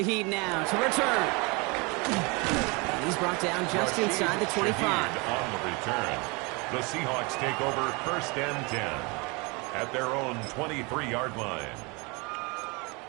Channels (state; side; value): quieter; left; 28.6 dB